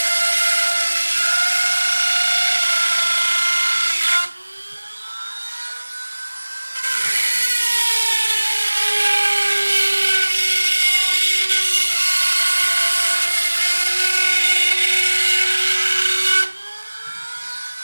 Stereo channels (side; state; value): both; inverted; correlation -1.00